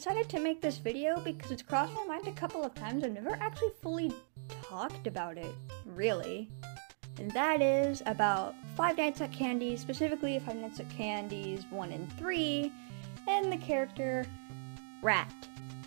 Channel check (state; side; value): silent; left; digital silence